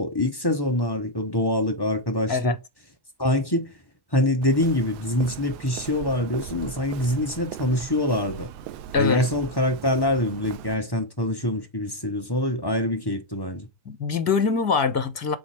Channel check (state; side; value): late; right; 1.1 ms